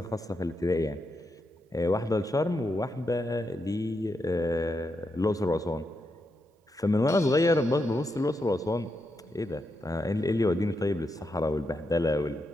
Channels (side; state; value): both; normal; correlation 0.84